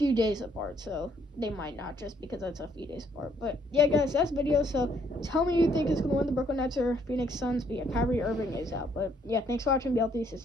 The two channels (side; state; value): both; normal; correlation 0.67